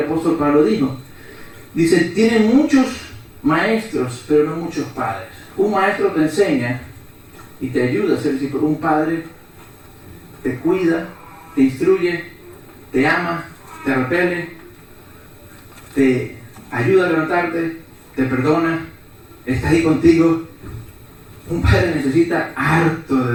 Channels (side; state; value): both; identical; correlation 1.00